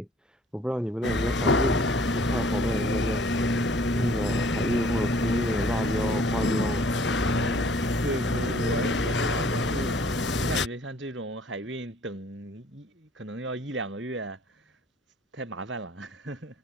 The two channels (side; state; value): both; normal; correlation 0.56